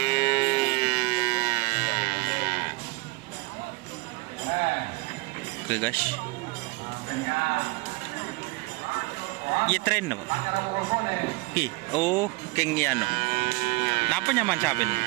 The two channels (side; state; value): left; quieter; 24.5 dB